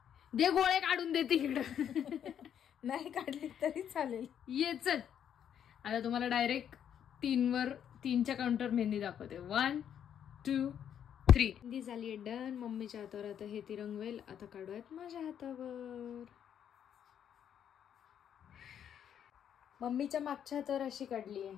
दे गोळे काढून देते इकडं. नाही काढली तरी चालेल. ये चल, आता तुम्हाला डायरेक्ट 3च्या काउंटर मेहंदी दाखवते. 1 2 3. मेहंदी झाली डन. मम्मीच्या हातावर आता हे ती रंगवेल. आता काढूयात माझ्या हातावर. मम्मीच्या मागच्या हातावर अशी काढली आहे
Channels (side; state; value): right; quieter; 9.1 dB